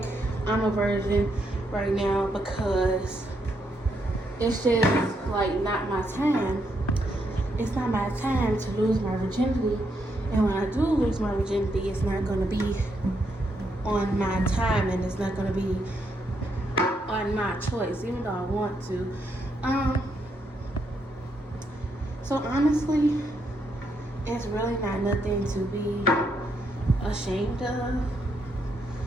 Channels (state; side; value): normal; both; correlation 0.78